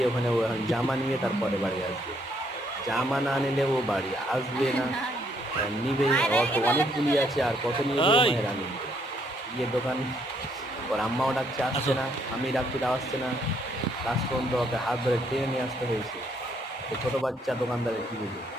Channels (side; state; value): both; normal; correlation 0.70